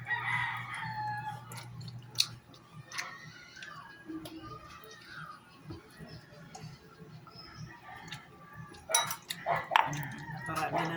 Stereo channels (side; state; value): both; identical; correlation 1.00